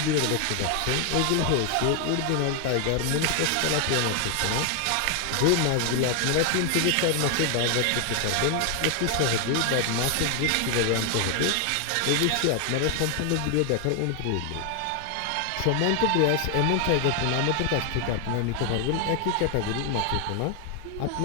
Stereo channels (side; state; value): both; different; correlation 0.00